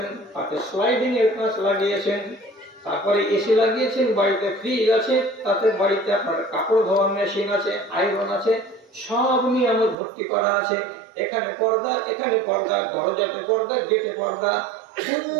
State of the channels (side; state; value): left; drops out; at 10.0 s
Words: তাতে স্লাইডিং এর কাঁচ লাগিয়েছেন, তারপরে এসি লাগিয়েছেন, বাড়িতে ফ্রিজ আছে, তাতে বাড়িতে আপনার কাপড় ধোয়ার মেশিন আছে, আয়রন আছে, সব নিয়ামত ভর্তি করা আছে। এখানে পর্দা, এখানে পর্দা, দরজাতে পর্দা, গেটে পর্দা, কোনো